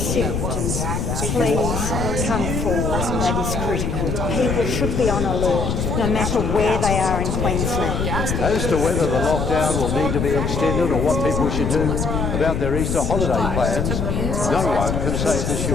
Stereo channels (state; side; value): noise; left; rumble, 1 dB below the sound